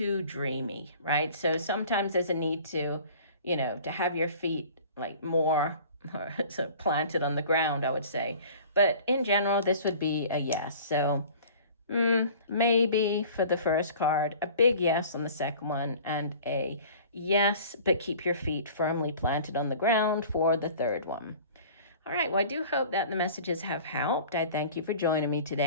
dreamy, right? So sometimes there's a need to, to have your feet like more sort of planted on the ground, I would say. But in general, this would be a yes. So maybe for the first card, a big yes on the second one, and a yes, but keep your feet firmly planted on the ground for the third one. All right, well, I do hope that the messages have helped. I thank you for joining me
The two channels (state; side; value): inverted; both; correlation -0.45